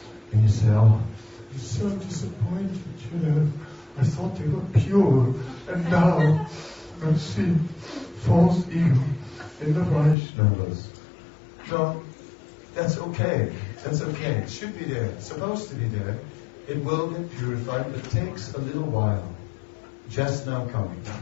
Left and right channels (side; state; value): right; drops out; at 10.2 s